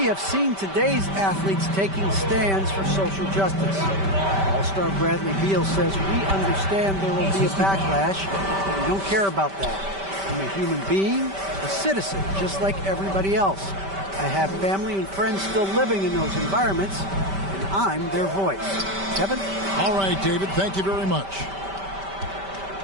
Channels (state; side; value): late; left; 5.1 ms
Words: have seen today's athletes taking stands for social justice. All-star Bradley Beal says, we understand there will be a backlash, but we don't care about that. I'm a human being, a citizen, just like everybody else. I have family and friends still living in those environments, and I'm their voice. Kevin? All right, David, thank you very much.